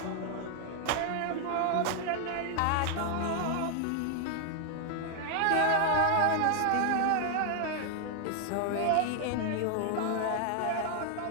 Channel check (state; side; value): different; both; correlation 0.00